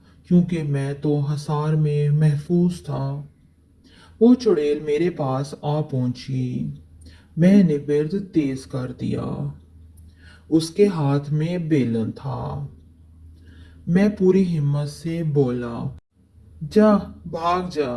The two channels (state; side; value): identical; both; correlation 1.00